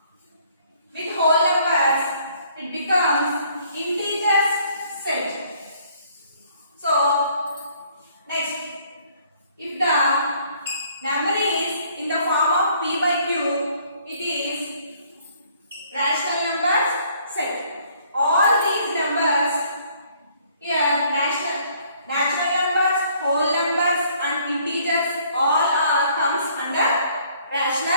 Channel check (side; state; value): both; inverted; correlation -0.62